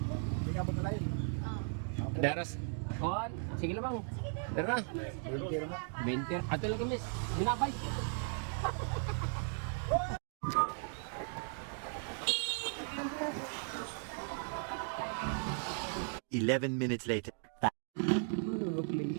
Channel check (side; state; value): left; silent; 53 dB below the other